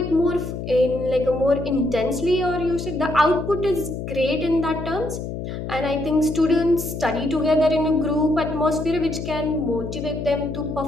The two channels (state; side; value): noise; left; hum, 6 dB below the sound